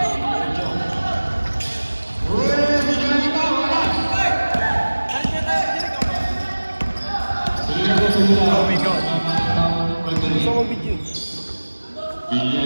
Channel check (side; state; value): both; inverted; correlation -1.00